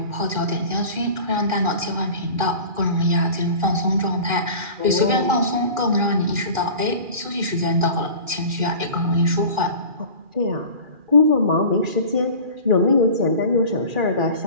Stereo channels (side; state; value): left; late; 2.4 ms